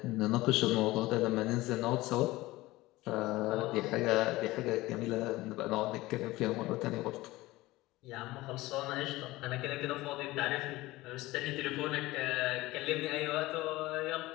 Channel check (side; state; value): right; quieter; 19.0 dB